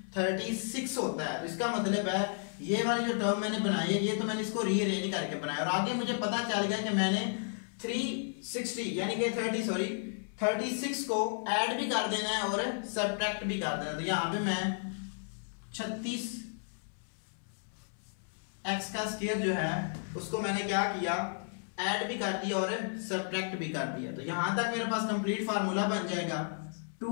36 होता है। तो इसका मतलब है ये वाली जो टर्म मैंने बनाई है ये तो मैंने इसको रीअरेंज करके बनाया और आगे मुझे पता चल गया कि मैंने 360 यानी कि 36 को ऐड भी कर देना है और सब्ट्रैक्ट भी कर देना है। तो यहां पे मैं 36 x का स्क्वायर जो है उसको मैंने क्या किया ऐड भी कर दिया और सब्ट्रैक्ट भी कर दिया। तो यहां तक मेरे पास कंप्लीट फार्मूला बन जाएगा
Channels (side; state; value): right; silent; 56 dB below the other